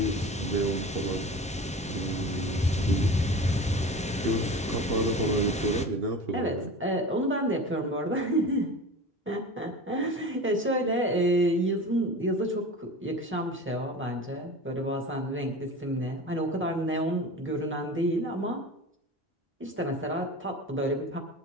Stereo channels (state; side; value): normal; both; correlation 0.34